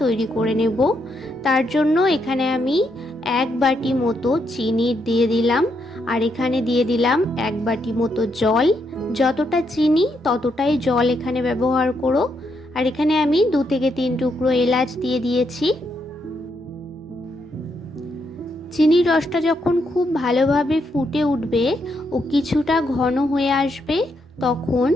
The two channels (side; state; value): both; normal; correlation 0.78